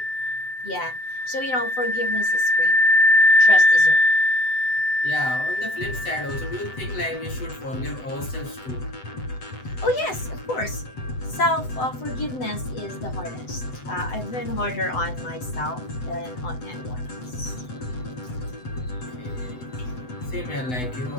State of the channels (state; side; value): late; right; 7.9 ms